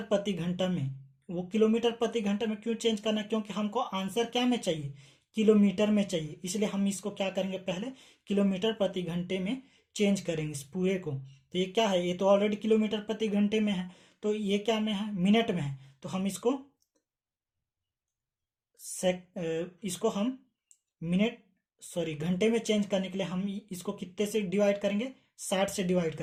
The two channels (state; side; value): identical; both; correlation 1.00